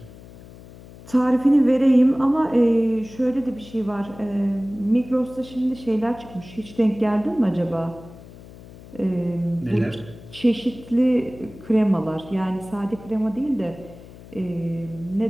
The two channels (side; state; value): left; noise; hum, 19 dB below the sound